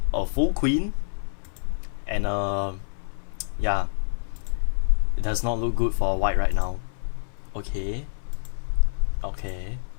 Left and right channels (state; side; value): silent; right; 61 dB below the other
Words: a full queen, and yeah, it does not look good for white right now. Okay.